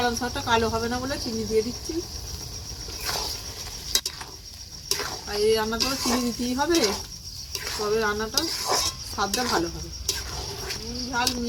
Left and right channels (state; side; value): identical; both; correlation 1.00